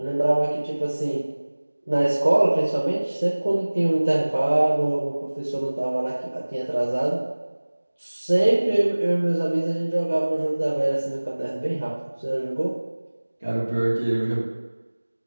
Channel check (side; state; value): both; inverted; correlation -1.00